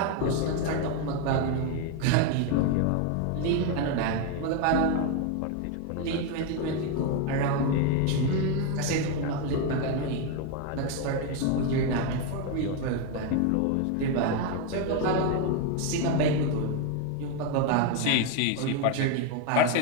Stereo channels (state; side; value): different; both; correlation 0.02